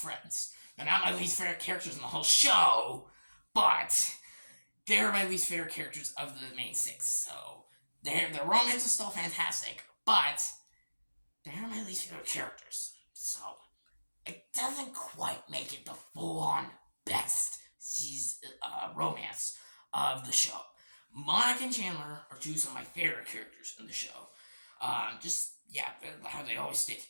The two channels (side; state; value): both; inverted; correlation -1.00